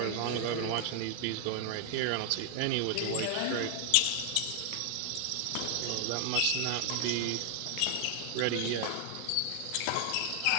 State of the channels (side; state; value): both; different; correlation 0.00